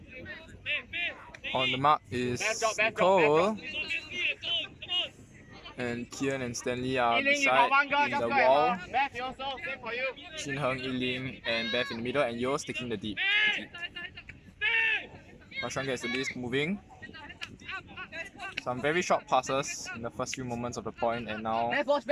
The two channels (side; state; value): both; identical; correlation 1.00